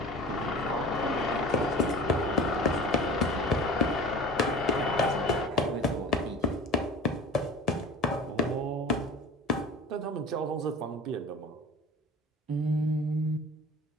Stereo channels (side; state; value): both; normal; correlation 0.39